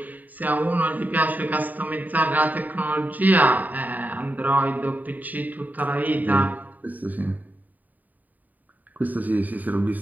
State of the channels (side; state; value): left; late; 0.082 ms